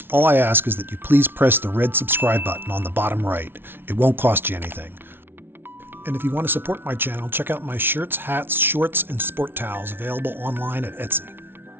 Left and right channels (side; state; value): left; late; 0.11 ms